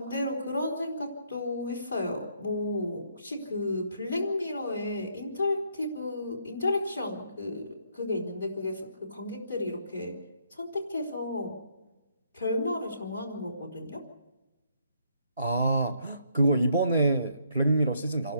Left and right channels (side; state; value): both; inverted; correlation -0.70